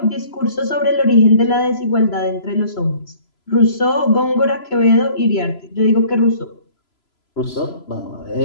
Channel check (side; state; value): right; late; 3.0 ms